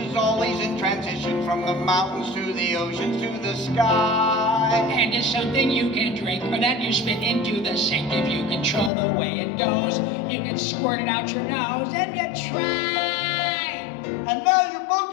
always in transition from the mountains to the oceans to the sky. And it's something you can drink or that you spit into the sink. If you control the way it goes, you can squirt it out your nose if you try. And now you're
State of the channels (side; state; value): right; drops out; at 8.9 s